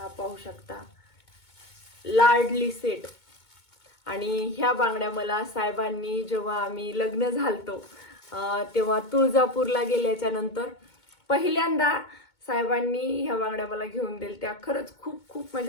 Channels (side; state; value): right; late; 2.2 ms